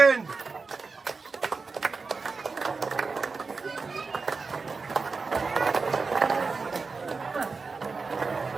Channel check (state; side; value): quieter; left; 4.4 dB